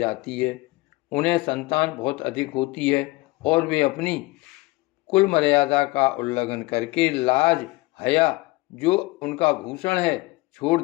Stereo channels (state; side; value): quieter; right; 22.3 dB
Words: है। उन्हें संतान बहुत अधिक होती है और वे अपनी कुल मर्यादा का उल्लंघन करके लाज, हया जो उनका भूषण है छोड़